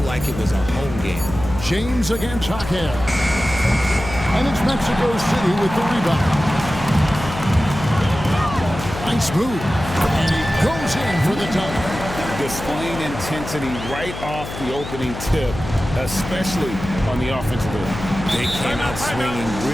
like it was a home game. James against Jaquez. And it's Mexico City with the rebound. Nice move. And he goes in for the tie. Displaying intensity right off the opening tip, especially on the offensive end. They came out swinging,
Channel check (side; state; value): left; noise; hum, 9 dB below the sound